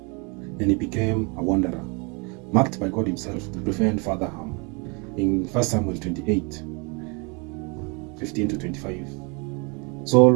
and he became a wanderer, marked by God himself to prevent further harm. In 1 Samuel 28:15-25,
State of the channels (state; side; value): quieter; left; 31.8 dB